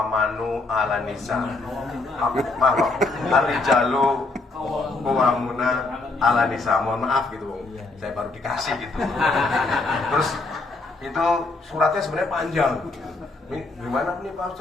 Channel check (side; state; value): right; quieter; 3.3 dB